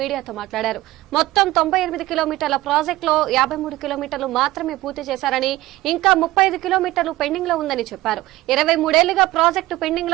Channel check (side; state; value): left; quieter; 17.4 dB